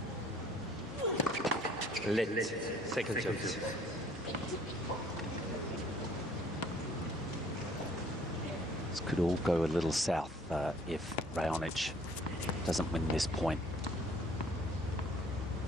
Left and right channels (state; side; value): normal; both; correlation 0.57